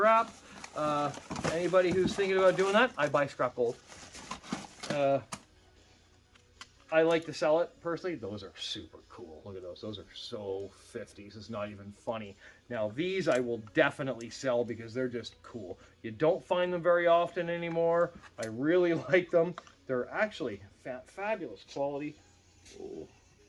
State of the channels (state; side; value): identical; both; correlation 1.00